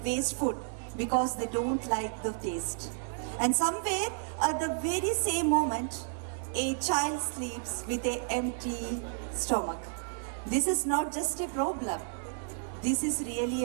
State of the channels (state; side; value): silent; left; 57 dB below the other